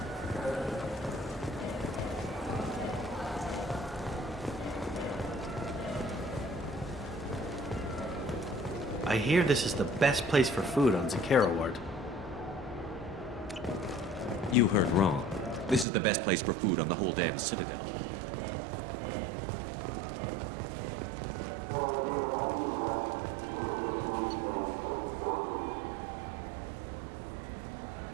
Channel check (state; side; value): drops out; left; at 15.9 s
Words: I hear this is the best place for food on Zakera Ward. You heard wrong. This is the best place for food on the whole damn Citadel.